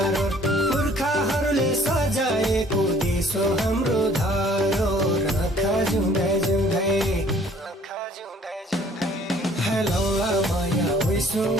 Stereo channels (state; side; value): normal; both; correlation 0.57